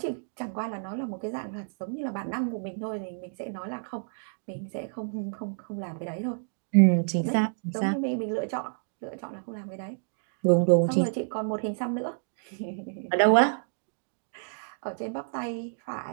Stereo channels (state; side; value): silent; left; digital silence